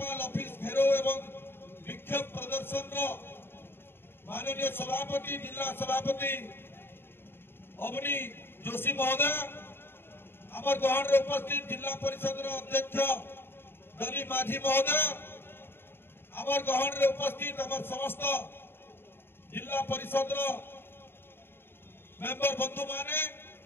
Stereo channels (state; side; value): late; right; 0.11 ms